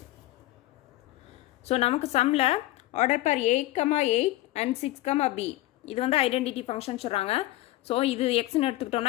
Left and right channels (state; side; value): quieter; right; 16.8 dB